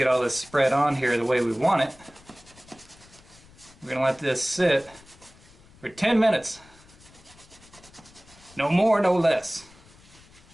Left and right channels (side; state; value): left; noise; rumble, 25 dB below the sound